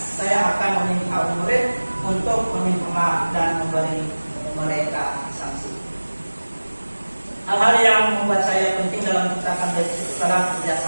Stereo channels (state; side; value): inverted; both; correlation -1.00